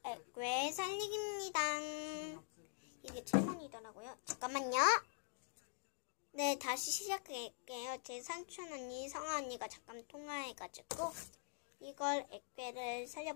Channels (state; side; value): silent; right; digital silence